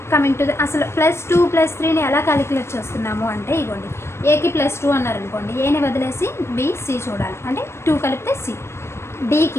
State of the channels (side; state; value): right; late; 0.13 ms